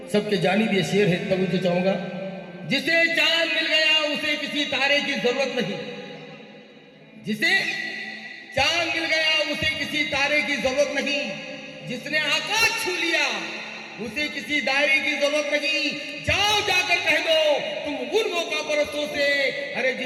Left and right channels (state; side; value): identical; both; correlation 1.00